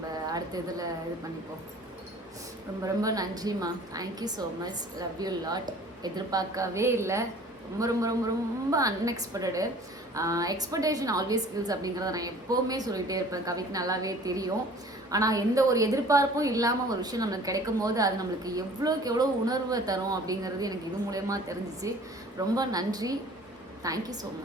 அடுத்த இதில் இது பண்ணிப்போம். ரொம்ப ரொம்ப நன்றிம்மா. Thank you so much. Love you lot. எதிர்பார்க்கவே இல்லை, ரொம்ப ரொம்ப ரொம்ப ரொம்ப அன்எக்ஸ்பெக்டடு. எக்ஸ்பெக்டேஷன் ஆல்வேஸ் ஸ்கில்ஸ் அப்படிங்கிறத நான் எப்போவுமே சொல்லிகிட்டே இருப்பேன், கவிக்கு நல்லாவே தெரியும். ஆனால் எந்த ஒரு எதிர்பார்ப்பும் இல்லாமல் ஒரு விஷயம் நம்மளுக்கு கிடைக்கும் போது அது நம்மளுக்கு எவ்வளோக்கு எவ்வளோ உணர்வை தரும் அப்படிங்கிறது எனக்கு இது மூலயமா தெரிஞ்சிச்சு. ரொம்ப நன்றி. Thank you so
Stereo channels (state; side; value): normal; both; correlation 0.48